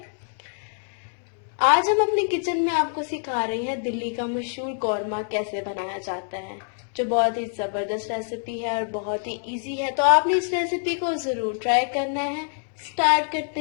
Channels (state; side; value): silent; right; 61 dB below the other